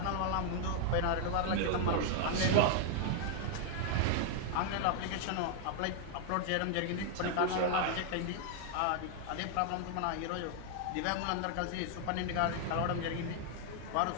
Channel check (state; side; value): different; both; correlation 0.00